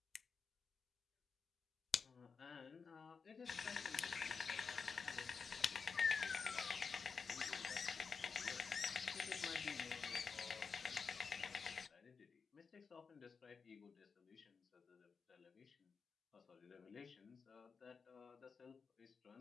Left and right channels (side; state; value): right; quieter; 5.4 dB